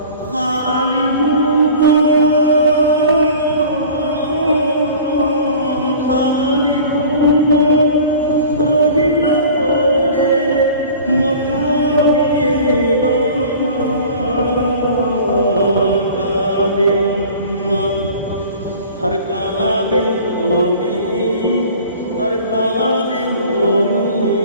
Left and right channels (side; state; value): both; inverted; correlation -0.43